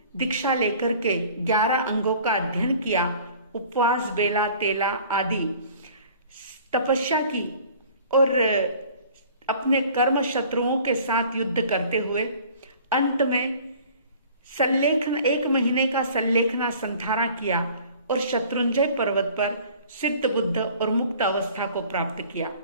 दीक्षा लेकर के 11 अंगों का अध्ययन किया, उपवास, बेला, तेला आदि तपस्या की और अपने कर्म शत्रुओं के साथ युद्ध करते हुए अंत में 1 महीने का संलेखना संधारा किया और शत्रुंजय पर्वत पर सिद्ध बुद्ध और मुक्त अवस्था को प्राप्त किया।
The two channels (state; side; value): inverted; both; correlation -0.49